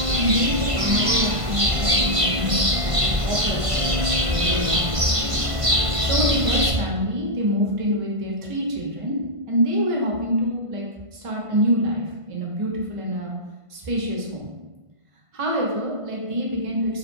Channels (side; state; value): left; late; 1.5 ms